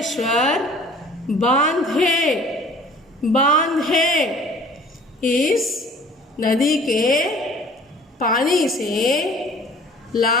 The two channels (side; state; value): both; normal; correlation 0.50